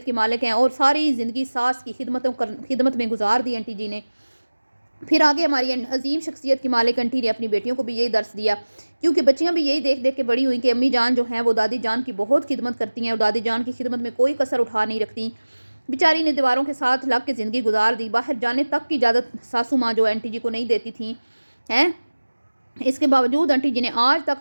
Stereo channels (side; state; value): both; inverted; correlation -1.00